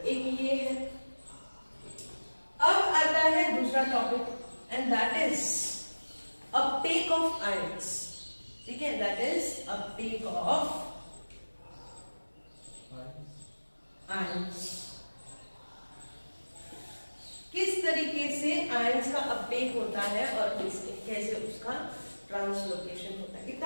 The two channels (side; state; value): both; inverted; correlation -1.00